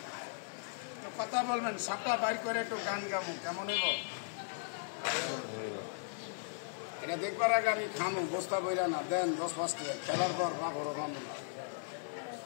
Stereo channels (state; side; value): silent; right; digital silence